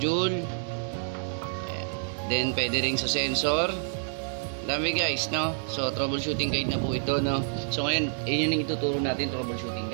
Then, pwede rin sa sensor. Dami guys, no? So, troubleshooting guide na po ito, no? So, ngayon, yun yung ituturo natin, troubleshooting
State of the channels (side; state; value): left; silent; 59 dB below the other